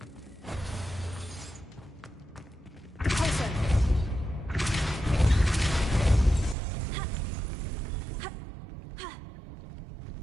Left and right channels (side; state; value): left; drops out; at 6.6 s